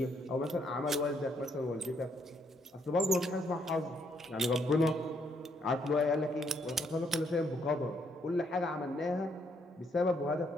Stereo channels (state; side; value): normal; both; correlation 0.71